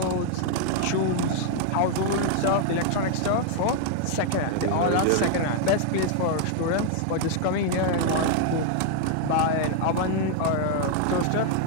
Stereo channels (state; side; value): different; both; correlation 0.00